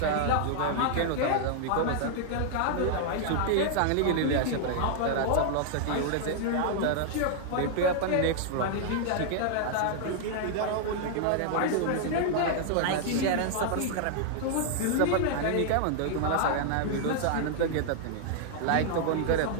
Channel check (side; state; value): both; different; correlation 0.00